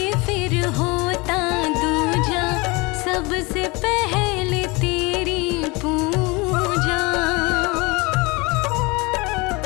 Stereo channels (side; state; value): right; quieter; 25.8 dB